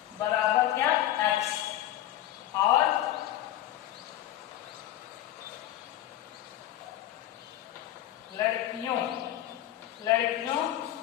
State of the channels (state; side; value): quieter; right; 13.3 dB